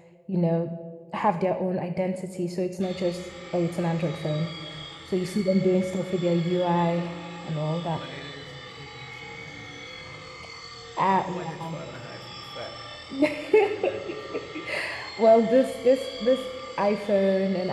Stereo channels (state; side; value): identical; both; correlation 1.00